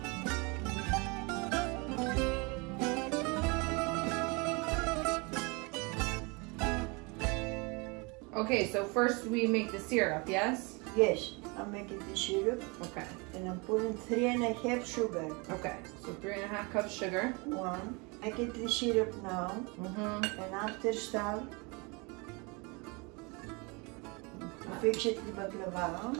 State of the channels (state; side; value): quieter; left; 29.1 dB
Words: Okay, so first we make the syrup, yes? Yes, I'm making the syrup. Okay. And I'm putting 3.5 sugar. Okay, so 3.5 cups sugar. One. Making the syrup now. And after start, fix it the baklava.